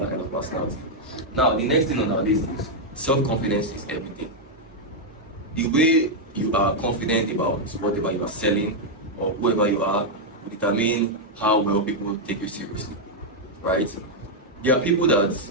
kind of personality. Now, the next thing on our list is self-confidence is everything. The way you are confident about whatever you are selling or whoever you are will determine how well people take you seriously, right? There are people that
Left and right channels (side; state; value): both; normal; correlation -0.02